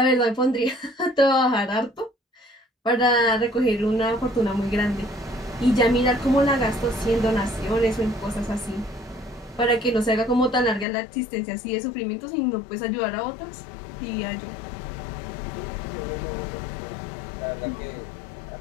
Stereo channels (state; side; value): drops out; right; at 10.9 s